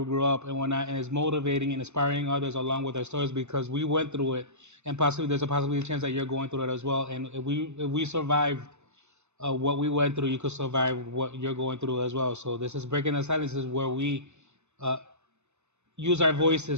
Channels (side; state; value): left; late; 0.82 ms